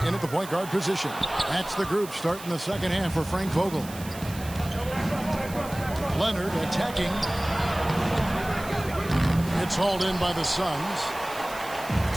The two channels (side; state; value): right; noise; hiss, 15 dB below the sound